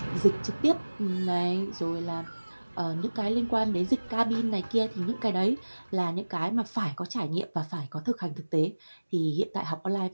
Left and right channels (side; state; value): both; inverted; correlation -1.00